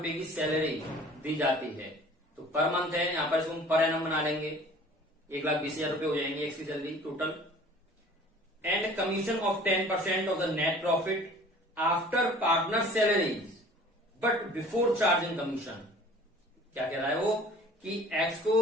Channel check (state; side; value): normal; both; correlation 0.48